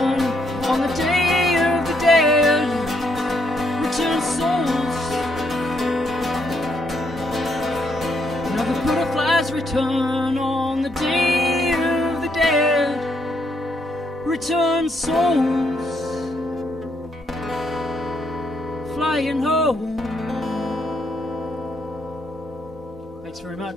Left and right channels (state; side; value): normal; both; correlation 0.74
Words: on the day of the dead, return souls. Now the butterflies return on the day of the dead, return souls, flying home. Thanks very